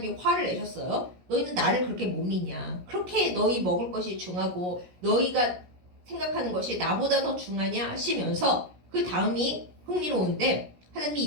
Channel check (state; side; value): late; left; 17 ms